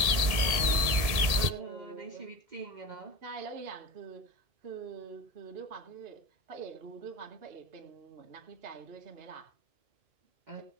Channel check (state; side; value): late; left; 1.8 ms